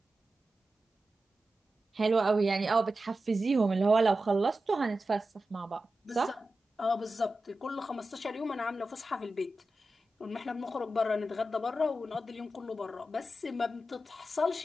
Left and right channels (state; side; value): normal; both; correlation 0.92